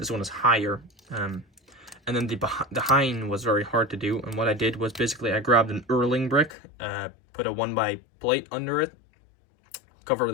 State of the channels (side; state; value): right; drops out; at 6.5 s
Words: one is higher. And then the hind was very hard to do, and what I did was basically I grabbed an Erling brick, put a 1x plate under it,